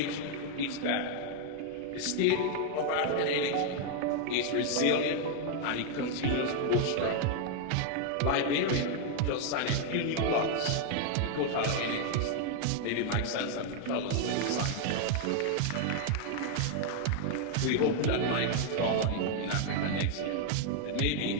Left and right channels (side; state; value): both; different; correlation 0.00